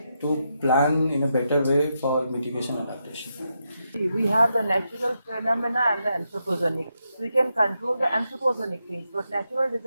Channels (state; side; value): inverted; both; correlation -0.84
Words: to plan in a better way for mitigation and adaptation. We have the natural phenomena and the anthropogenic. We can control the anthropogenic things, but natural